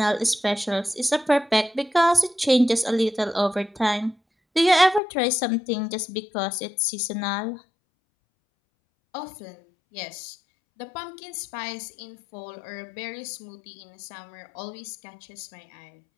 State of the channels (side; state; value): right; drops out; at 5.0 s